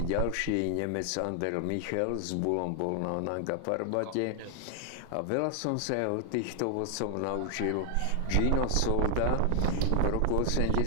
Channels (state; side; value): different; both; correlation 0.00